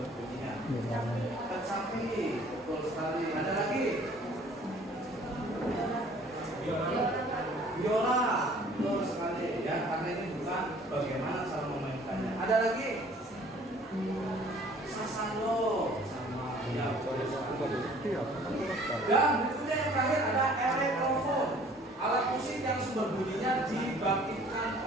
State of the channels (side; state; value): both; normal; correlation 0.54